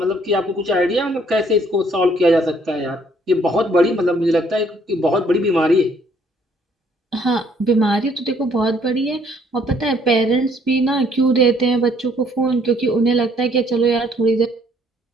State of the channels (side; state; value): both; normal; correlation 0.63